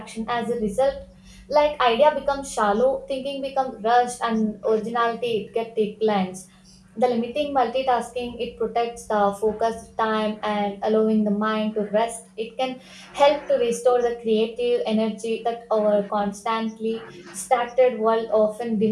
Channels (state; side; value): identical; both; correlation 1.00